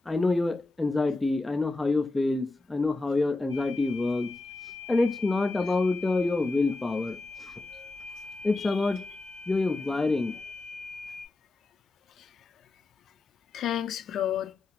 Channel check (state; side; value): quieter; right; 3.1 dB